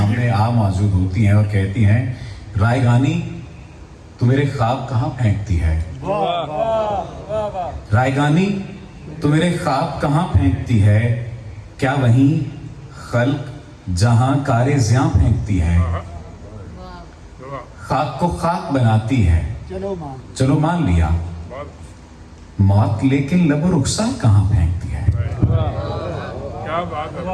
موجود ہوتی ہیں اور کہتی ہیں، رائگانی تو میرے خواب کہاں پھینکتی ہے؟ رائگانی تو میرے خواب کہاں پھینکتی ہے؟ کیا وہیں خلق جہاں کارِ زیاں پھینکتی ہے؟ خاک کو خاک بناتی ہے، چلو مان لیا، موت لیکن لب و رخسار کہاں پھینکتی ہے؟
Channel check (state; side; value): identical; both; correlation 1.00